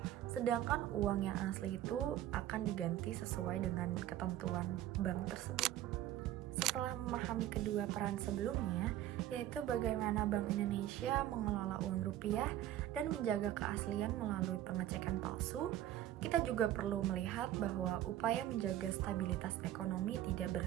sedangkan uang yang asli itu akan diganti sesuai dengan ketentuan bank tersebut. Setelah memahami kedua peran sebelumnya, yaitu bagaimana Bank Indonesia mengelola uang rupiah dan menjaga keaslian melalui pengecekan palsu, kita juga perlu melihat bahwa upaya menjaga stabilitas ekonomi tidak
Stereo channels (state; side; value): quieter; left; 12.9 dB